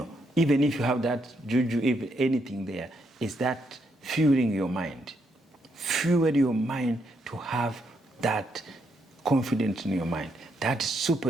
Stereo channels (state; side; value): normal; both; correlation 0.77